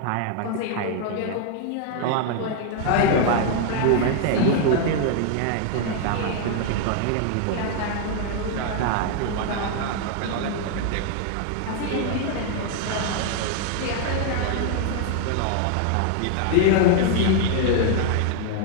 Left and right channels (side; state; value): both; different; correlation 0.00